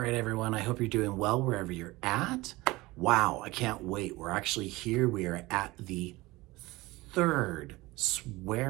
everyone, I hope you're doing well wherever you're at. Wow, I can't wait. We're actually here. We are at the third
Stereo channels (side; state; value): left; quieter; 20.6 dB